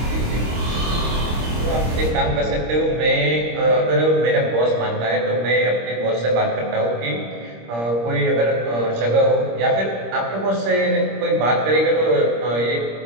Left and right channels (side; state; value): left; late; 26 ms